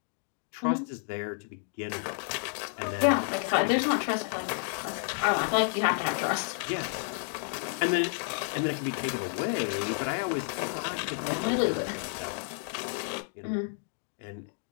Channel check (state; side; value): silent; right; 57 dB below the other